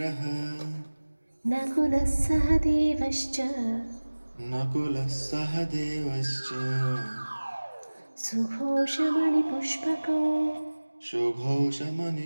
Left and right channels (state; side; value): inverted; both; correlation -1.00